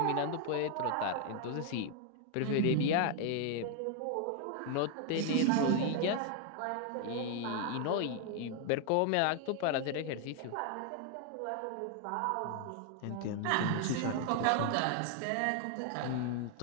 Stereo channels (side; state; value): both; different; correlation 0.00